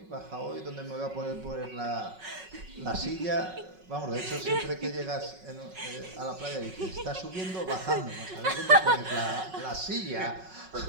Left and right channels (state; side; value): late; left; 5.4 ms